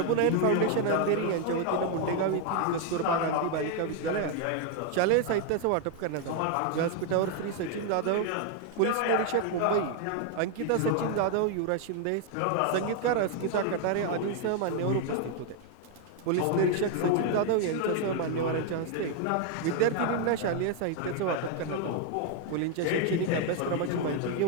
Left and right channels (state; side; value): different; both; correlation 0.00